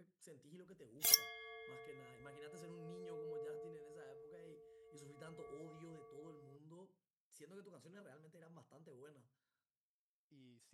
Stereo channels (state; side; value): identical; both; correlation 1.00